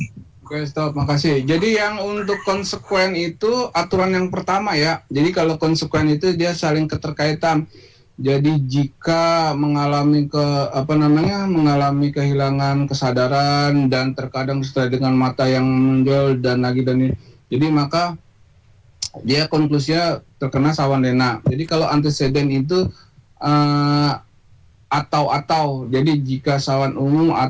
Oke, stop, makasih. Jadi yang untuk konsekuen itu aturan yang pertama ya. Jadi kalau konsekuen itu dia saling keterkaitan. Jadi jika mengalami mengalami kehilangan kesadaran dan terkadang disertai dengan mata yang menonjol dan lagi dan ini. Jadi maka dia konklusinya terkena sawan lena. Jadi kalau antecedent itu atau. Jadi jika sawan umum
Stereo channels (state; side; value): identical; both; correlation 1.00